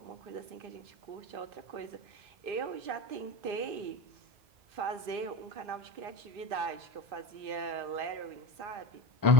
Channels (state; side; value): late; left; 2.6 ms